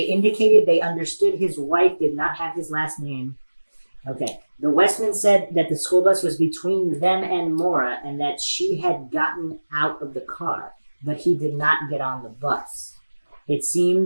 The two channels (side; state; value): both; inverted; correlation -1.00